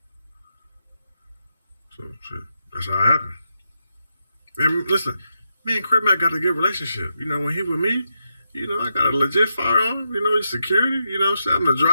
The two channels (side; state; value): both; inverted; correlation -0.85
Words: So, shit, that's how it happened. And listen, me and CripMac got a good relationship. You know, when he with me, you know, I got a legit firearm. You know, he's security. You know what I'm saying? I'm the